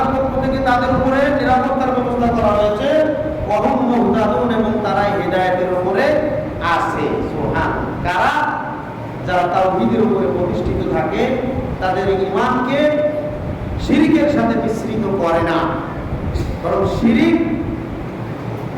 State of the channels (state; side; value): identical; both; correlation 1.00